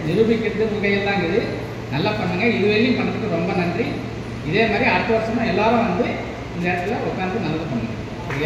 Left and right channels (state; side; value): identical; both; correlation 1.00